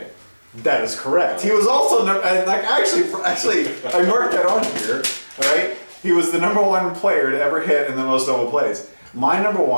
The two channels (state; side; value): inverted; both; correlation -1.00